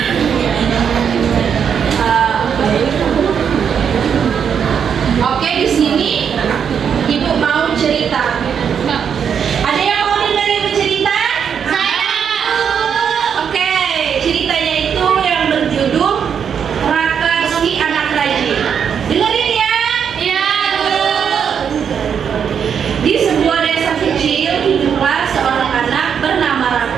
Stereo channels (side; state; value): left; quieter; 7.5 dB